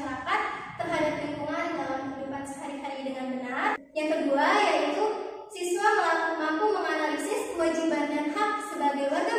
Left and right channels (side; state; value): both; identical; correlation 1.00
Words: terhadap lingkungan dalam kehidupan sehari-hari dengan benar. Yang kedua yaitu siswa mampu menganalisis kewajiban dan hak sebagai warga